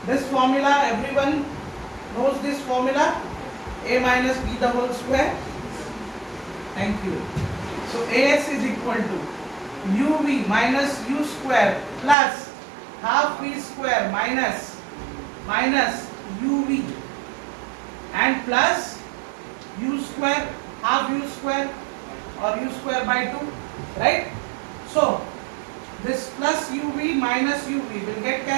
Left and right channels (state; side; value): drops out; left; at 12.2 s